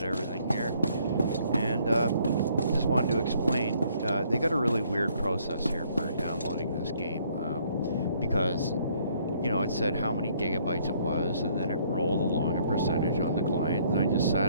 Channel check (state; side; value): inverted; both; correlation -0.65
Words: everything here. And just wanted to explain, they got a really weird process here for downloading this game. Because, you know, it said how many gigabytes it was, and then it rolled along a percentage on the client, and I just